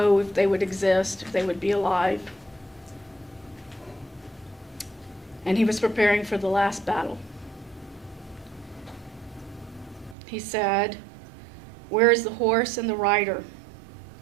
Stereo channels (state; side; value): drops out; left; at 10.2 s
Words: if they would exist, if they would be alive. And he was preparing for the last battle. He said, "Where is the horse and the rider?